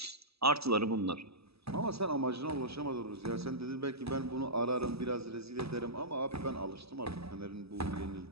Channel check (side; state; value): left; late; 0.78 ms